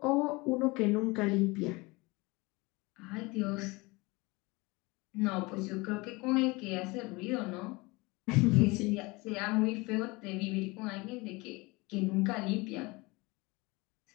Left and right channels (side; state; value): right; quieter; 24.3 dB